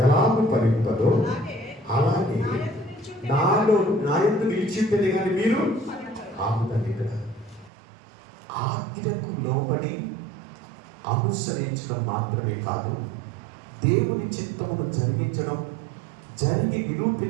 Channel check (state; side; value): drops out; left; at 7.7 s